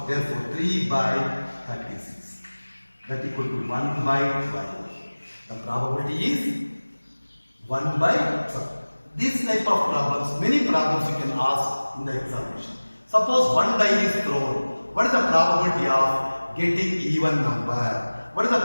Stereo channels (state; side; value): inverted; both; correlation -1.00